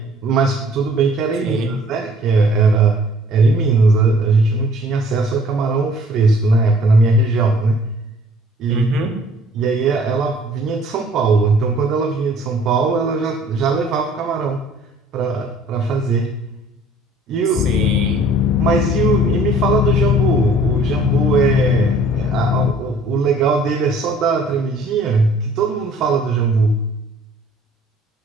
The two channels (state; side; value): normal; both; correlation 0.54